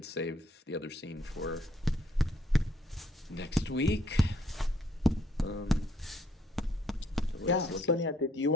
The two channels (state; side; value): normal; both; correlation 0.67